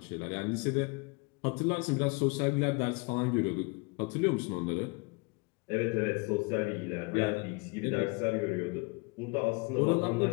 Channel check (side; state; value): right; quieter; 29.6 dB